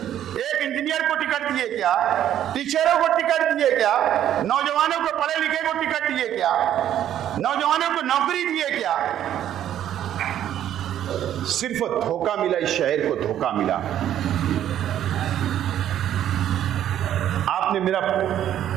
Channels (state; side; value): quieter; left; 11.1 dB